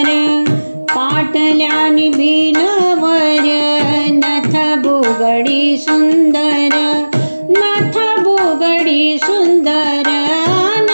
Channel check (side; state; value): both; inverted; correlation -1.00